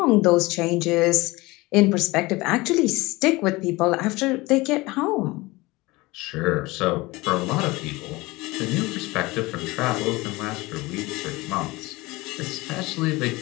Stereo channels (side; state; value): right; quieter; 21.8 dB